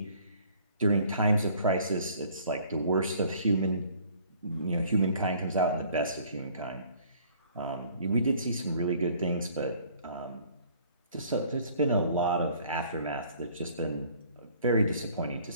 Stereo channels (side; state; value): both; inverted; correlation -0.56